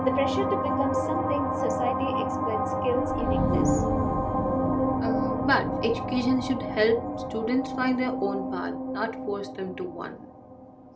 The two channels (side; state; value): both; identical; correlation 1.00